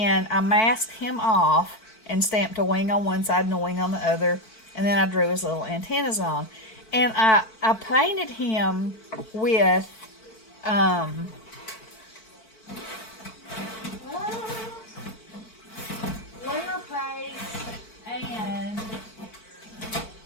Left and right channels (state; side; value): late; right; 4.5 ms